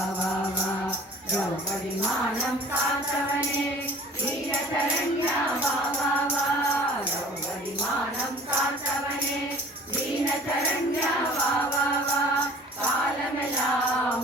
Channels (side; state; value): both; normal; correlation 0.47